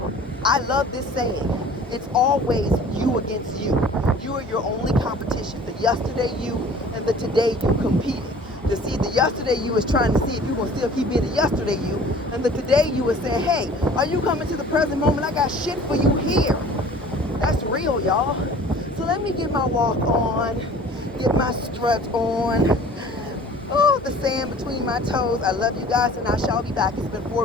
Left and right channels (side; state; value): both; normal; correlation 0.47